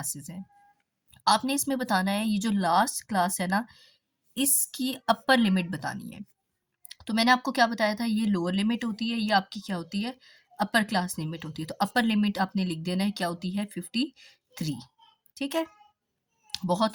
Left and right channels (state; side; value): identical; both; correlation 1.00